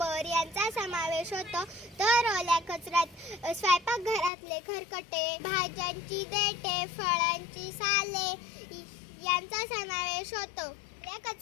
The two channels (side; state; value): right; drops out; at 4.3 s